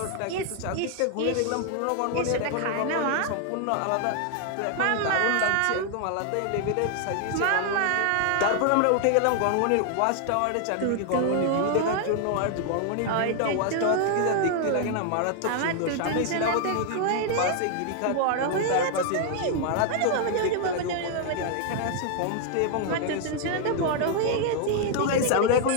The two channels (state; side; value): different; both; correlation 0.00